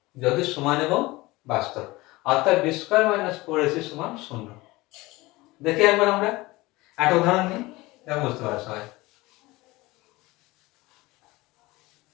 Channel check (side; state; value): right; quieter; 20.8 dB